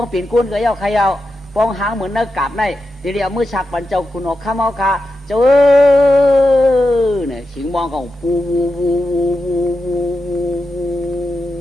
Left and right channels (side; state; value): both; normal; correlation 0.89